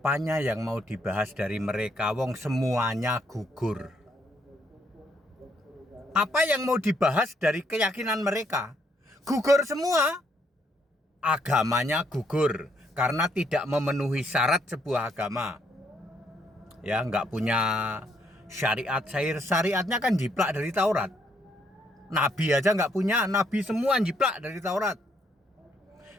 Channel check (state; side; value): normal; both; correlation 0.71